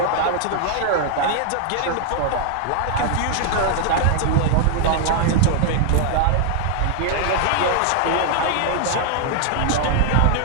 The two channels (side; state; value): both; different; correlation 0.00